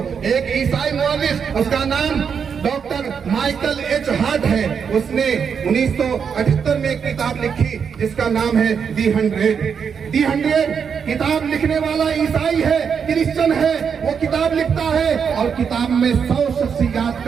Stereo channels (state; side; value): quieter; left; 6.8 dB